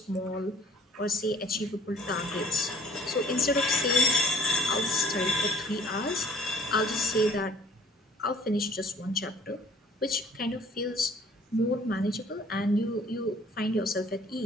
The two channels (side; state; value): both; normal; correlation 0.55